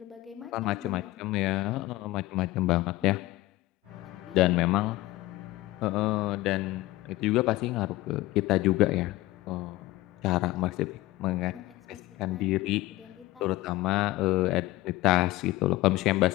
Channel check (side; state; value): right; quieter; 18.1 dB